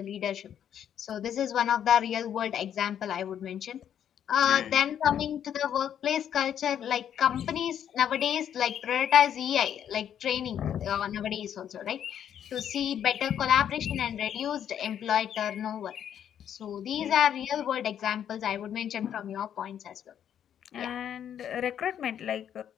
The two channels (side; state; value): right; quieter; 9.5 dB